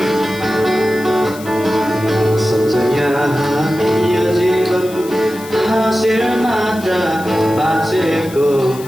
हाँसेर मात्र बाँचेको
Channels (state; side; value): noise; left; hiss, 17 dB below the sound